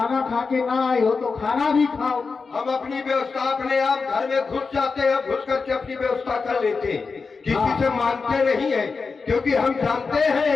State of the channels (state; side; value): quieter; right; 4.7 dB